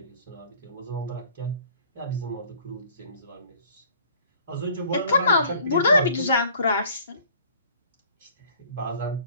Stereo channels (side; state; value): both; inverted; correlation -0.53